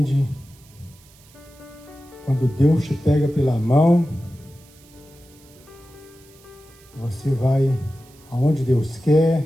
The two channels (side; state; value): right; noise; hiss, 27 dB below the sound